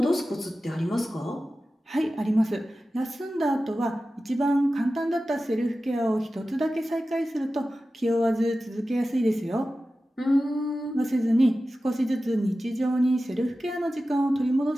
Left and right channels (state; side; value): normal; both; correlation 0.94